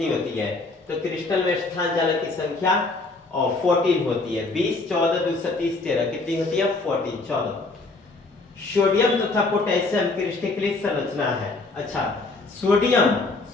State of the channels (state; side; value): quieter; right; 3.5 dB